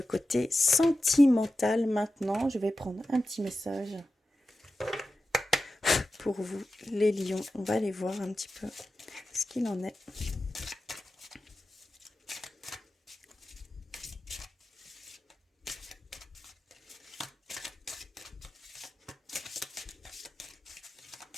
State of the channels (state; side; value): normal; both; correlation 0.93